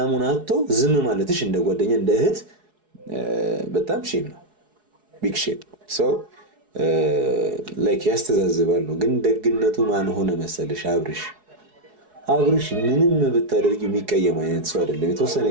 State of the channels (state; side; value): late; left; 4.7 ms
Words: አጥቶ ዝም ማለትሽ እንደ ጓደኛ እንደ እህት በጣም ሼም ነው፣ ቢግ ሼም። ሶ ላይክ ያስተዛዝባል ነው። ግን ደግነቱ ማን ሆነ መሰለሽ? አብርሽ ምንም ብታደርጊ የሚቀየም አይነት ሰው አይደለም። የተወሰነ